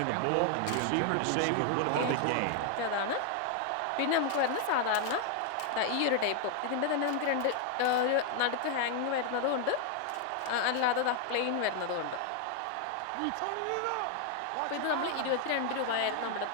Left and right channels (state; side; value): different; both; correlation 0.00